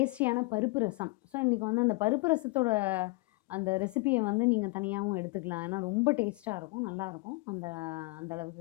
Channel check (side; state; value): right; quieter; 24.9 dB